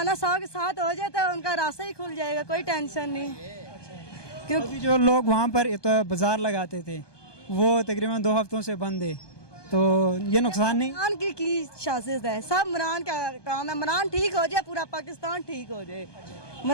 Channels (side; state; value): right; late; 1.2 ms